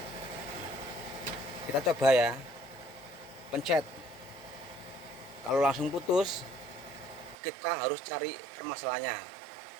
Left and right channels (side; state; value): left; drops out; at 7.4 s